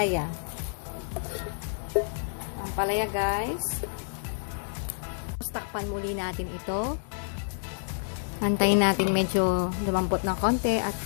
Ampalaya guys. Takpan muli natin ito. Antayin natin medyo lumambot ng konti at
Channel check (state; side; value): silent; right; digital silence